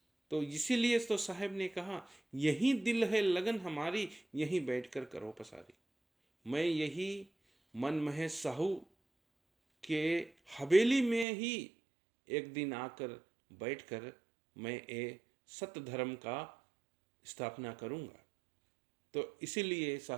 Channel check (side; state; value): left; drops out; at 11.2 s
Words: तो इसीलिए तो साहब ने कहा यही दिल है लगन हमारी, यहीं बैठकर करो पसारी। मैं यही मन महेश साहू के हवेली में ही एक दिन आकर बैठकर मैं ये सत्य धर्म का स्थापना करूंगा। तो इसीलिए